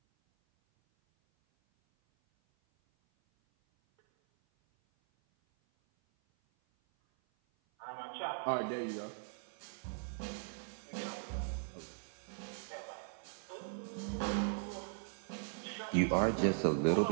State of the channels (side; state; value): left; silent; 52 dB below the other